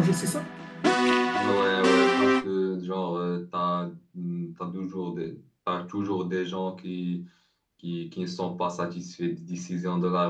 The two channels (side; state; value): both; identical; correlation 1.00